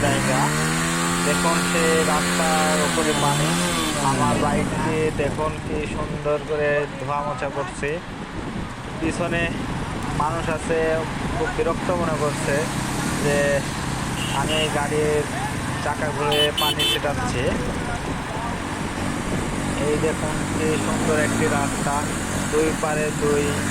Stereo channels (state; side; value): identical; both; correlation 1.00